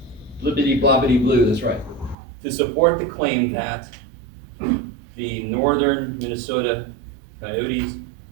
blibbity blobbity blue, that's right. To support the claim that the northern Minnesota coyotes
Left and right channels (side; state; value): left; drops out; at 2.1 s